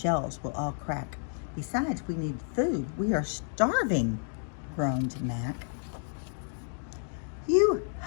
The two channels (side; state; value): right; silent; 57 dB below the other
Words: will all crack. Besides, we need food. We are starving," groaned Mac. "You